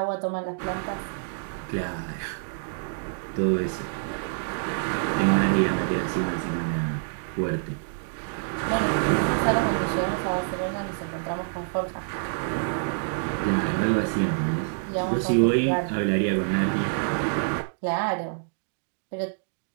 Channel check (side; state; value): left; silent; digital silence